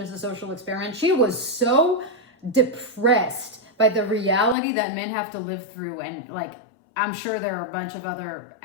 a social experiment. She was so depressed by the reality that men have to live through. And I'm sure there are a bunch of other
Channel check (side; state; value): right; drops out; at 4.5 s